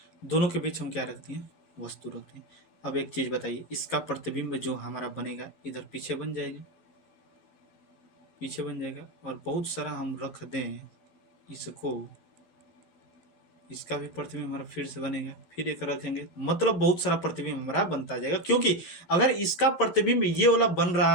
दोनों के बीच हम क्या रखते हैं, वस्तु रखते हैं। अब एक चीज बताइए, इसका प्रतिबिंब जो हमारा बनेगा इधर पीछे बन जाएगा, पीछे बन जाएगा। और बहुत सारा हम रख दें इसको, इसका भी प्रतिबिंब हमारा फिर से बनेगा, फिर एक रखेंगे, मतलब बहुत सारा प्रतिबिंब हमारा बनता जाएगा। क्योंकि अगर इसका प्रतिबिंब ये वाला बन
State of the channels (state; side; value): late; right; 11 ms